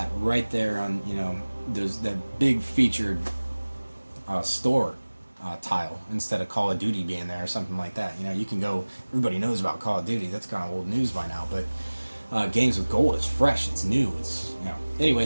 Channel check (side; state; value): both; inverted; correlation -1.00